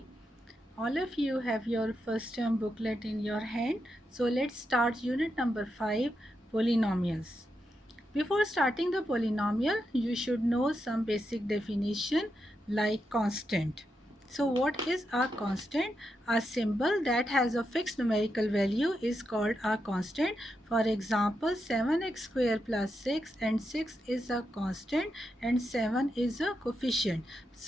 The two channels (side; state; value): both; normal; correlation 0.85